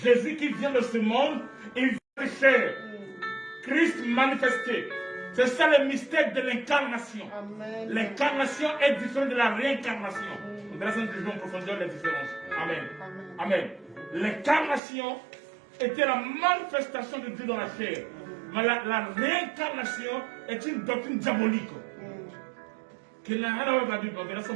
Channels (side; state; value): left; drops out; at 14.8 s